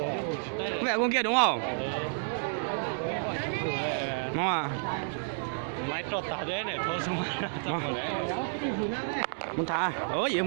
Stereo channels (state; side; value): silent; left; 57 dB below the other